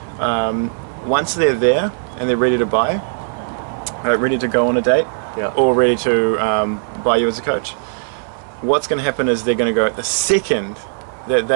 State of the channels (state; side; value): silent; left; 60 dB below the other